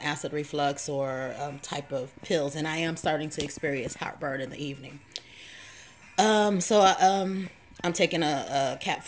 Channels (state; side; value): identical; both; correlation 1.00